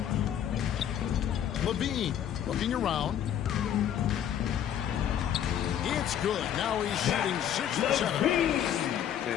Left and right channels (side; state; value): right; quieter; 9.9 dB